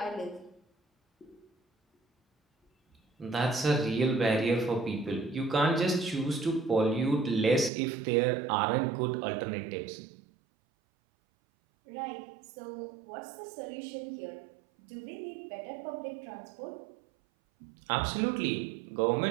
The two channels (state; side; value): drops out; left; at 7.7 s